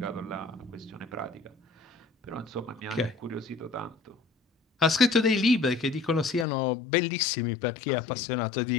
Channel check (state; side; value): drops out; right; at 6.5 s